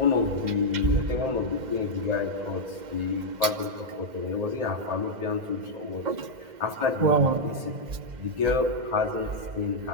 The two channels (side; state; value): left; late; 2.1 ms